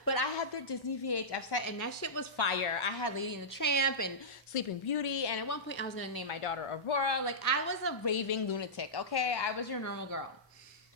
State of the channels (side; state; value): both; normal; correlation -0.15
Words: but I had the Disney VHS set, and that shit was fire. I had Lady and the Tramp and Sleeping Beauty, and at one point I was gonna name my daughter Aurora. Like, I was a raving lunatic. Okay, I was your normal girl.